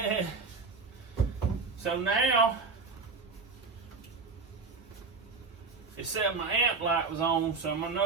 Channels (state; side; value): quieter; left; 4.3 dB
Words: So now, it said my amp light was on, so I